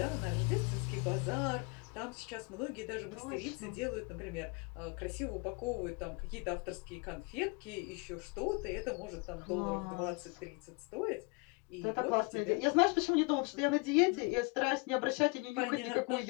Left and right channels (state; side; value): quieter; right; 30.4 dB